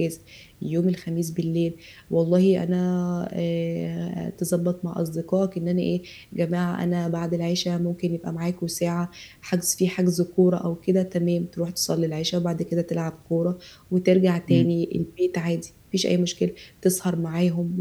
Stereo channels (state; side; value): identical; both; correlation 1.00